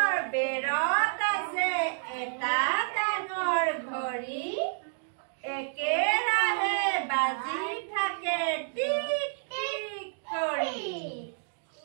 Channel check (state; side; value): silent; left; digital silence